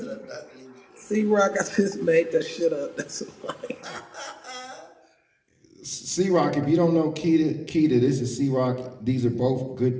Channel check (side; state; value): both; identical; correlation 1.00